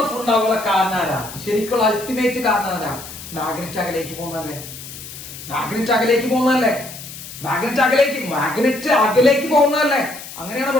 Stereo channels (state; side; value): noise; left; hiss, 13 dB below the sound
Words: ഉണ്ടാകാനുള്ള കാരണം ആരാ? ശരിക്കുള്ള അൾട്ടിമേറ്റ് കാരണം ആരാ? മാഗ്നറ്റ് അകലേക്ക് പോകുന്നല്ലേ. മാഗ്നറ്റ് അകലേക്ക് പോകുന്നതല്ലേ. അങ്ങനെയാണ്